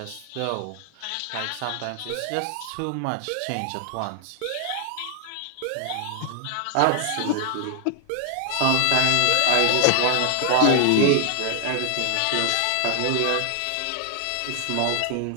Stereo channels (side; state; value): both; different; correlation 0.00